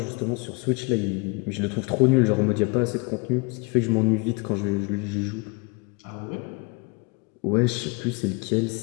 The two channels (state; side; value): quieter; right; 29.2 dB